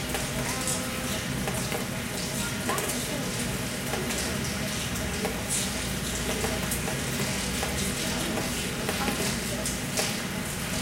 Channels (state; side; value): identical; both; correlation 1.00